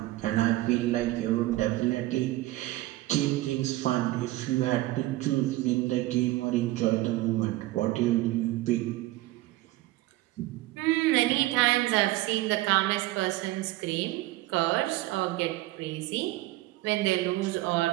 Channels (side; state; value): left; quieter; 17.7 dB